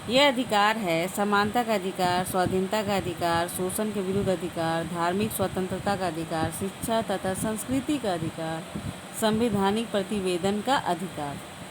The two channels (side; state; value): both; identical; correlation 1.00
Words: ये अधिकार है समानता का अधिकार, स्वाधीनता का अधिकार, शोषण के विरुद्ध अधिकार, धार्मिक स्वतंत्रता का अधिकार, शिक्षा तथा संस्कृति का अधिकार, संवैधानिक प्रतिवेदन का अधिकार।